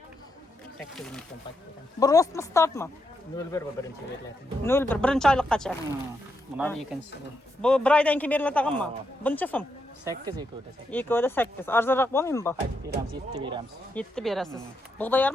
8 ming so'm paketdan. Bu rostmi startmi? 01 bu birinchi beriladi. 01 birinchi oyliqqacha. Bular ikkinchisi. Bu bir oydan keyin beriladiganmi? Buncha so'm? 8 ekodi. Ikkovida 8. Arzonroq bo'lmaymi bu? Beramiz 7 beramiz. 7 berasiz. Bug'doy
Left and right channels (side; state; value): both; normal; correlation 0.81